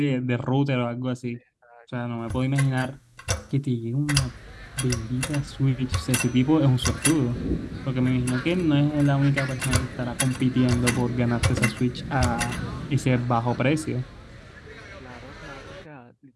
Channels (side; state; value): both; identical; correlation 1.00